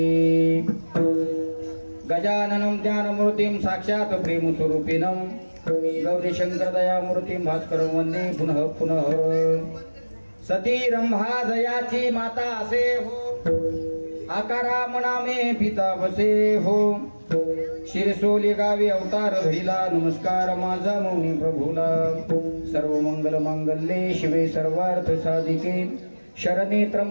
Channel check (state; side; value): inverted; both; correlation -1.00